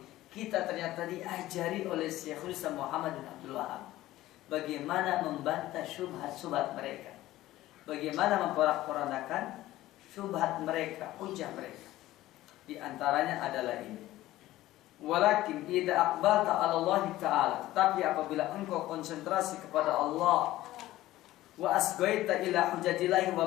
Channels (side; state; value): right; quieter; 15.8 dB